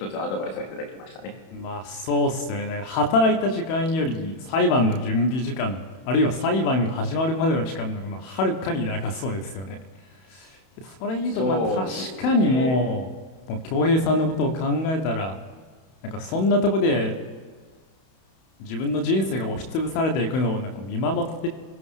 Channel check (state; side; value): late; right; 31 ms